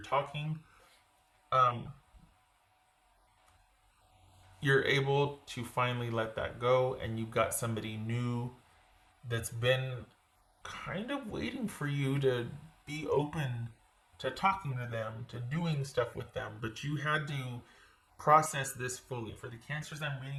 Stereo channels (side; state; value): both; identical; correlation 1.00